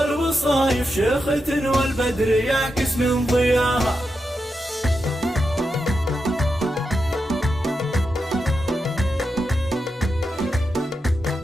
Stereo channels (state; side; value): normal; both; correlation 0.87